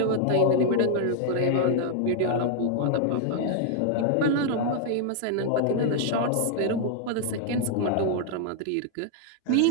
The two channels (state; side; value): different; both; correlation 0.00